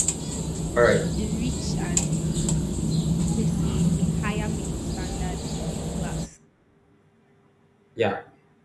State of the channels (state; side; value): identical; both; correlation 1.00